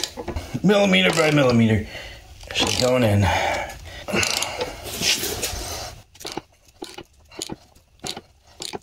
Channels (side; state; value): both; identical; correlation 1.00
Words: Millimeter by millimeter. She's going in.